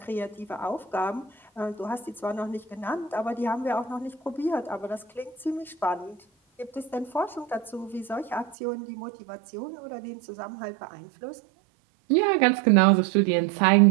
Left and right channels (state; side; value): drops out; left; at 8.6 s